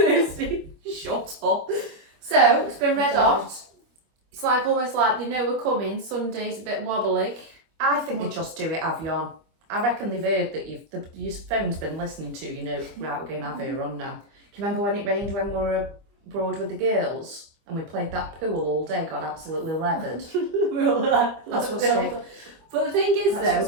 Shut up. So, it's been red God. hot. It's like almost like they know we're coming. Sunday's a bit wobbly. I think they just do it Avion. I reckon they've heard that your phone's been listening to, you know, right, we're going to have her on now. Do you remember when it rained when we were abroad with the girls? And we played that pool all day, got absolutely leathered. That's what's going But the thing is,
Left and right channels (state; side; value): late; left; 25 ms